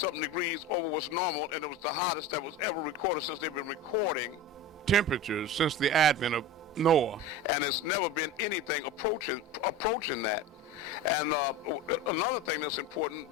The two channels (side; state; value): both; normal; correlation 0.29